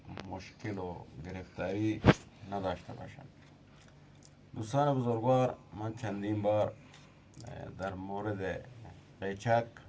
مشکل و گرفتاری نداشته باشند. دوستان بزرگوار، من چندین بار در مورد قیچک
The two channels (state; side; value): identical; both; correlation 1.00